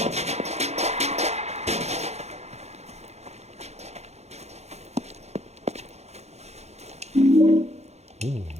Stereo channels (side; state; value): left; late; 0.31 ms